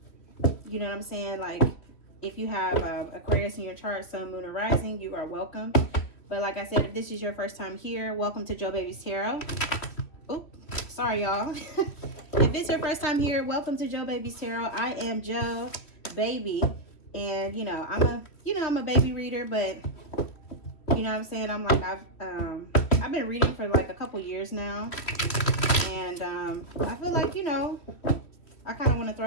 You know what I'm saying? Like, if you have Aquarius in your chart, Sun, Moon, or Rising, you are welcome. But like I said, if this is your first time here, welcome to Joe Baby's Tarot. Oop, sorry y'all. If it's your first time here, welcome to Joe Baby's Tarot. I am Joe Baby, and I'm a baby reader, but you know what I'm saying, I've been reading for like a couple years now, and I feel like I kind of want to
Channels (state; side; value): late; right; 3.1 ms